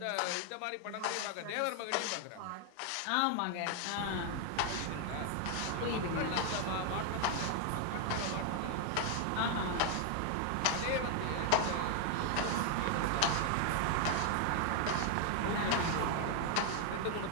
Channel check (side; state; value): both; different; correlation 0.00